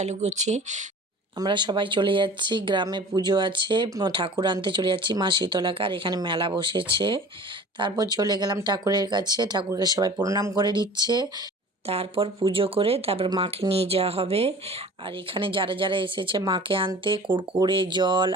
করছি। আমরা সবাই চলে যাচ্ছি, গ্রামে পুজো আছে, ঠাকুর আনতে চলে যাচ্ছি মা শীতলাকে। আর এখানে মেলা বসেছে। তারপর চলে গেলাম ঠাকুরের কাছে, ঠাকুরকে সবাই প্রণাম করে দিচ্ছে। তারপর পুজো করে তারপর মাকে নিয়ে যাওয়া হবে। আর এখানে যারা যারা এসেছে মাকে আনতে, কুড়কুড়ে, জল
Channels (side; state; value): both; normal; correlation 0.43